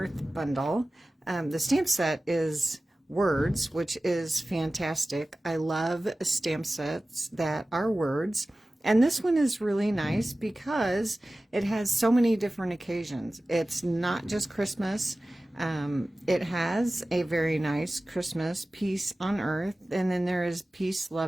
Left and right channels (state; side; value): normal; both; correlation 0.96